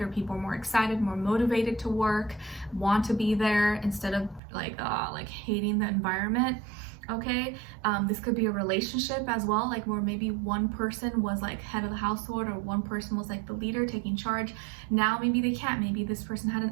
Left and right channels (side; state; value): left; drops out; at 4.4 s